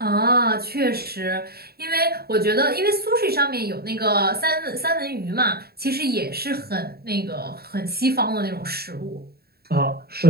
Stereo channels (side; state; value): left; late; 0.45 ms